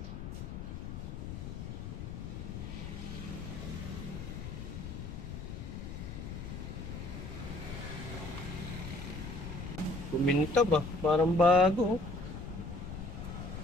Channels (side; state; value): left; noise; rumble, 7 dB below the sound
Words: Kuminta ba? Parang bago.